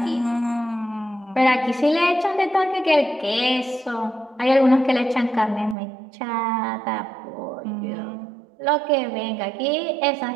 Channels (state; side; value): drops out; left; at 5.8 s